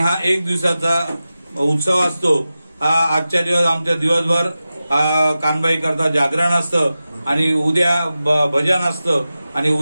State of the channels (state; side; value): inverted; both; correlation -0.94